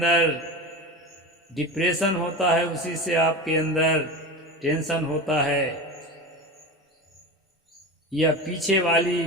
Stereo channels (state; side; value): normal; both; correlation 0.27